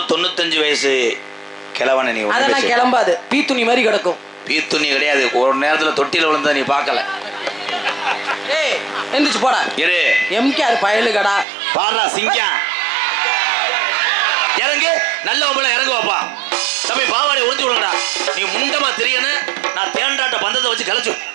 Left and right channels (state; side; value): drops out; left; at 11.5 s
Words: வயசு கிழவன நீ. அதெல்லாம் கிளம்பாது. பீத்துணி மாதிரி கிடக்கும். பீத்துணி கிடையாது. ஒரு நேரத்துல தொட்டில விழுந்தா நீ பார்க்கல. ஏய் எந்திரிச்சு போடா. இரு எம்கேஆர் பயலுகடா. பாடுறா சிங்கம். இறங்கு. நல்ல ஒம்பளை இறங்கு வாப்பா. தம்பி பாவாடை உறிஞ்சு விடுங்கடா. நீ முண்டமா தெரியணும். நான் தேண்டாட்ட பந்தத்தை வச்சு கலைச்சு